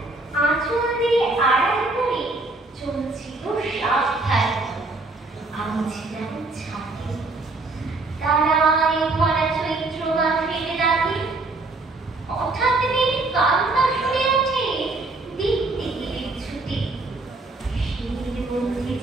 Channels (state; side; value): quieter; left; 3.2 dB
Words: আঁচল দিয়ে আড়াল করে চলছিল সাবধানে। আমি ছিলাম ছাদে, তারায় ভরা চৈত্র মাসের রাতে। হঠাৎ কান্না শুনে ওঠে দেখতে গেলে ছুটে। শির মধ্যে